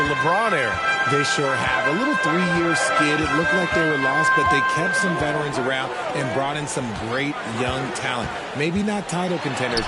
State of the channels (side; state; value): both; identical; correlation 1.00